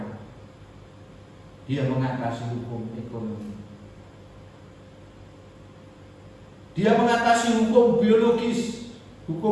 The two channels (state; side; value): identical; both; correlation 1.00